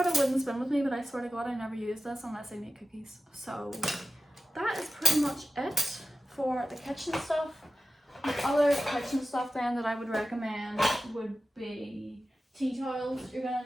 a wooden spoon with me, but I swear to God I never use this unless I make cookies. So that is pretty much it for the kitchen stuff. The other kitchen stuff then that I would recommend would be tea towels. You're going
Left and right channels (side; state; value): both; normal; correlation 0.95